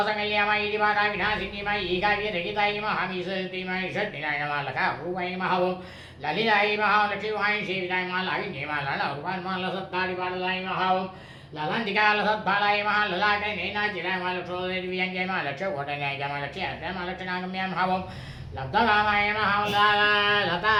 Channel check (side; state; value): both; identical; correlation 1.00